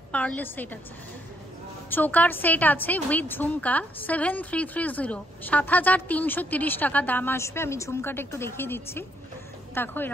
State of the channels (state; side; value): normal; both; correlation 0.73